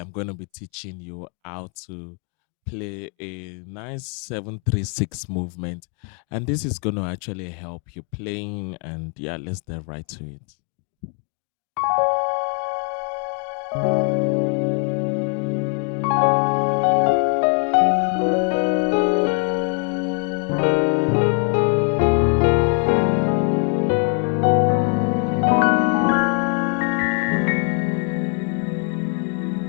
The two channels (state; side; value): quieter; right; 38.9 dB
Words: going to be teaching you how to play a nice 736 movement, and this is going to actually help you playing, and yeah, let's dive right to it.